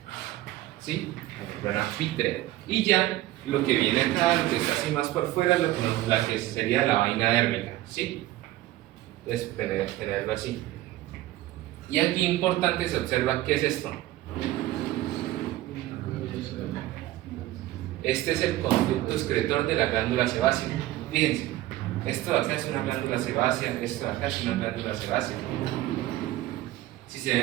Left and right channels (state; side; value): quieter; left; 15.8 dB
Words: ¿sí? La membrana vítrea. Y ya lo que viene acá, lo que está así más por fuera, la que sería la vaina dérmica, ¿sí? Entonces, tenerlo así. Y aquí importante se observa qué es esto. Este es el conducto excretor de la glándula sebácea. Fíjense, esto de acá es una glándula sebácea, esto de acá es una glándula sebácea.